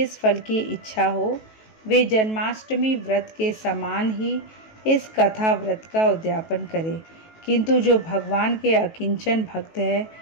फल की इच्छा हो, वे जन्माष्टमी व्रत के समान ही इस कथा व्रत का उद्यापन करें। किंतु जो भगवान के अकिंचन भक्त हैं,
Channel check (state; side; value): late; right; 18 ms